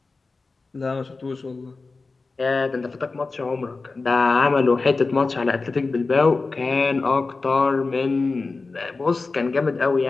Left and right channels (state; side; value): quieter; right; 3.9 dB